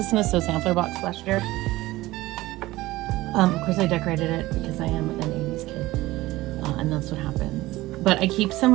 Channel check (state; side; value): quieter; left; 18.1 dB